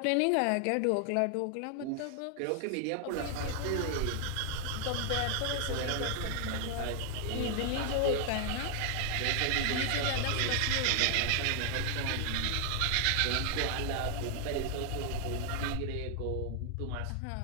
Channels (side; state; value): both; different; correlation 0.00